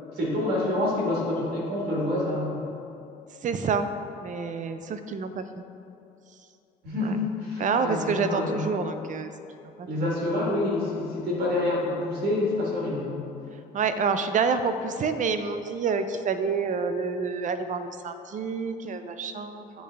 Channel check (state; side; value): normal; both; correlation 0.34